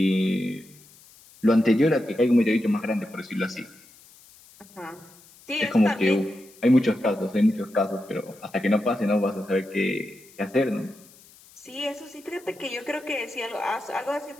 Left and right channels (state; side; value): noise; left; hiss, 25 dB below the sound